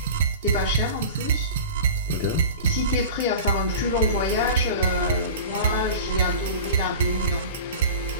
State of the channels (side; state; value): both; inverted; correlation -0.34